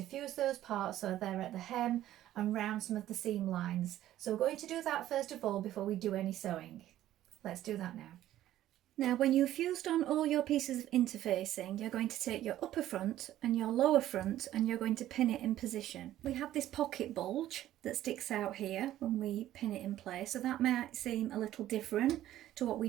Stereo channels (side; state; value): left; quieter; 13.3 dB